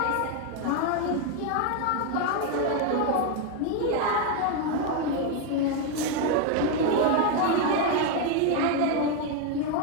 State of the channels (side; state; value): both; different; correlation 0.01